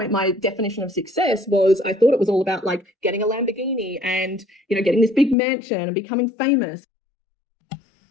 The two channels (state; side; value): drops out; right; at 5.4 s